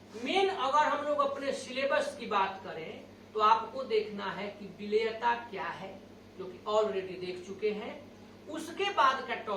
मेन अगर हम लोग अपने सिलेबस की बात करें तो आपको देखना है कि विलेयता क्या है, जो कि ऑलरेडी देख चुके हैं। उसके बाद का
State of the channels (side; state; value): both; identical; correlation 1.00